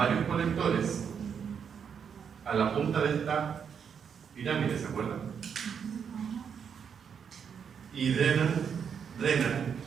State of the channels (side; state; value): left; quieter; 7.2 dB